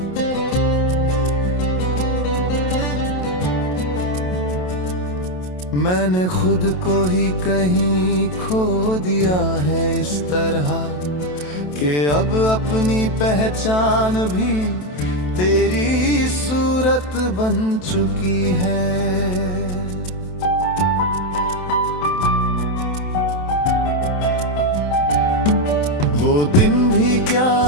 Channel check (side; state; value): right; late; 27 ms